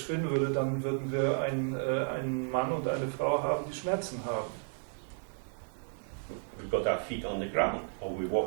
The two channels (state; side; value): silent; left; 56 dB below the other